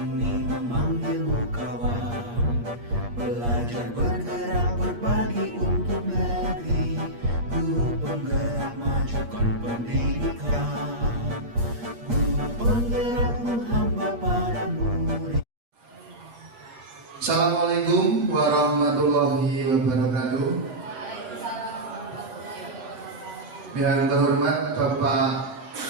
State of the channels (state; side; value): late; left; 8.5 ms